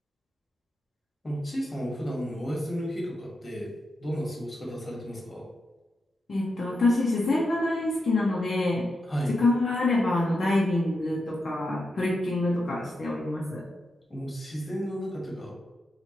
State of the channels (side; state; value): both; normal; correlation 0.86